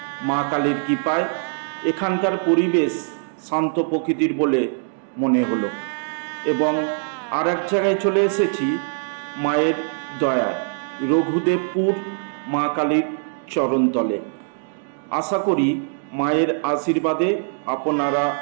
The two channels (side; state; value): left; silent; digital silence